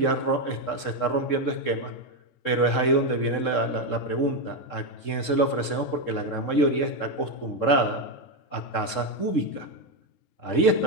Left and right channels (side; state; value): right; late; 3.7 ms